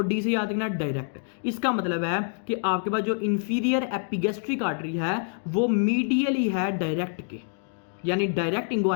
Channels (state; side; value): silent; right; 59 dB below the other